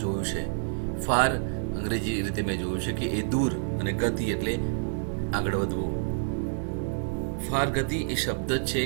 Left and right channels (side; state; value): left; silent; digital silence